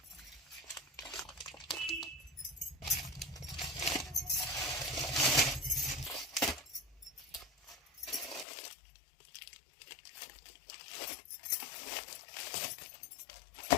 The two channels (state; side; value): drops out; right; at 8.5 s